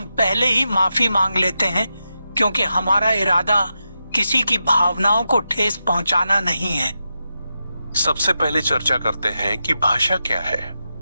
पहले ही माफी मांग लेते हैं, क्योंकि हमारा इरादा किसी की भावनाओं को ठेस पहुंचाना नहीं है। सबसे पहले चर्चा करते हैं कि भाषा क्या है।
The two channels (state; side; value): inverted; both; correlation -0.88